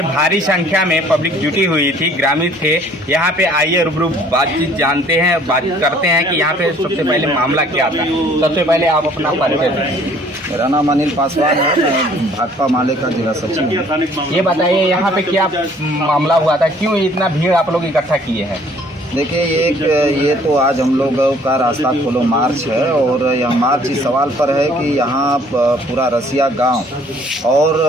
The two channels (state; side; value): normal; both; correlation 0.57